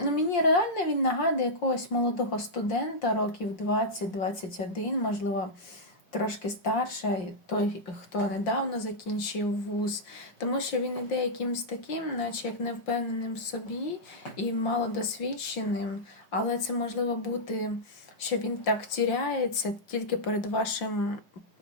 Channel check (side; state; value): right; late; 5.7 ms